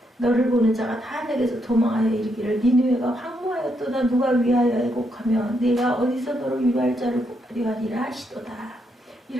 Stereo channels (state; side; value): normal; both; correlation 0.78